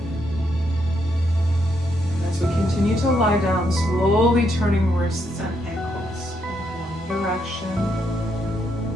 And as we continue to lie down, slowly turning wrists and ankles in one direction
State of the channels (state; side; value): normal; both; correlation 0.77